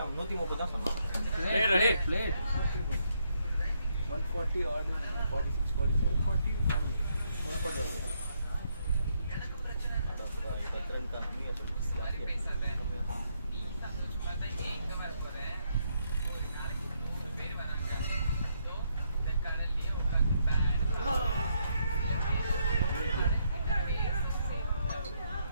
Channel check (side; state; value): both; inverted; correlation -0.75